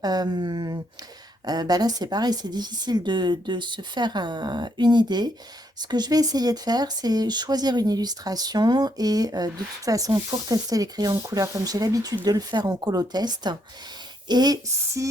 là, c'est pareil, c'est difficile de se faire une idée. Ce que je vais essayer de faire, c'est choisir une illustration et de toute façon, pour tester les crayons de couleur, comme j'ai l'habitude de le faire en colotest, et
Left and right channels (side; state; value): both; normal; correlation 0.74